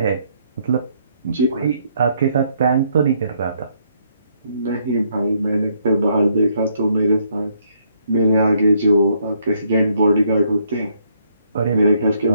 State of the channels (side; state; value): both; inverted; correlation -0.71